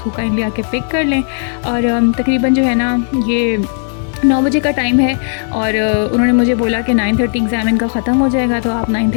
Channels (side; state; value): right; silent; digital silence